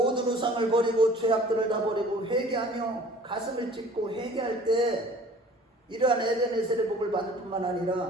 우상을 버리고 죄악들을 다 버리고 회개하며 가슴을 찢고 회개할 때 이러한 에베네셀의 복을 받을 뿐만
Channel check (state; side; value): normal; both; correlation 0.49